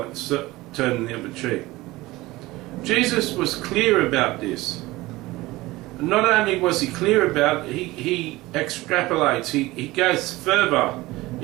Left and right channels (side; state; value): left; quieter; 19.5 dB